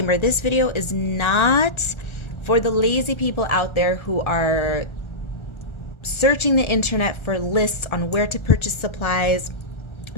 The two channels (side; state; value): right; late; 1.3 ms